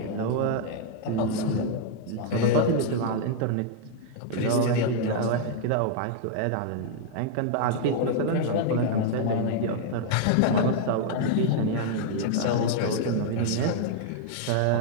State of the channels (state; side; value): different; both; correlation -0.01